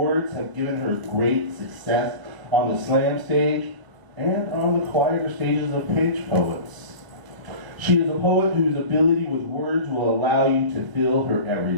have given her great success on the slam stage and on the quieter stages of page poets. She is a poet whose ability with words will allow you to feel her every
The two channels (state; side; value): late; left; 1.0 ms